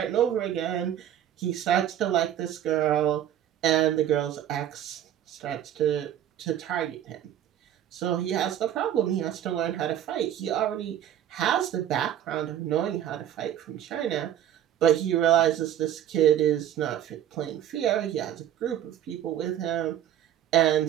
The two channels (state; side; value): quieter; left; 10.9 dB